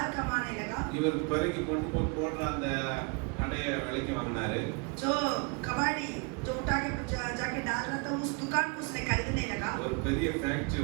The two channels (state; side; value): quieter; left; 32.5 dB